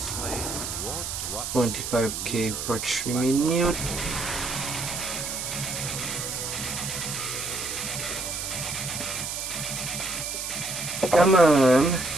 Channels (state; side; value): noise; right; hiss, 4 dB below the sound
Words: $25K for 3 minutes. Come on.